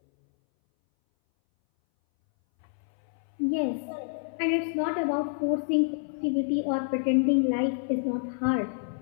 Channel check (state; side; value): silent; right; 59 dB below the other